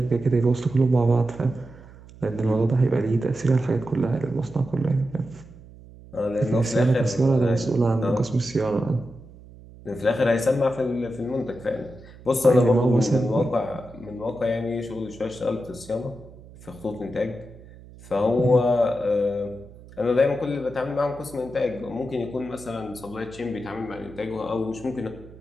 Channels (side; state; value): right; noise; hum, 20 dB below the sound